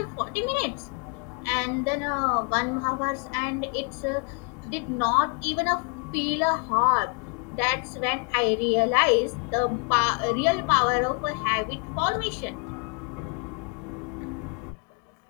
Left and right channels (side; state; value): right; quieter; 37.5 dB